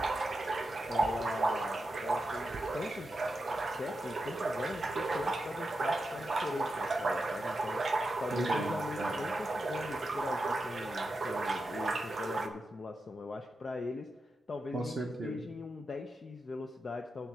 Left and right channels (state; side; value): normal; both; correlation 0.88